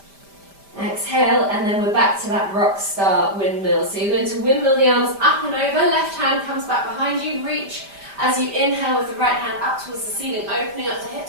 Exhale, and then we're back to that rock star windmill. So you're going to windmill the arms up and over. Left hand comes back behind you. Reach as you inhale with the right hand up towards the ceiling, opening up the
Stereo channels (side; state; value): left; late; 5.0 ms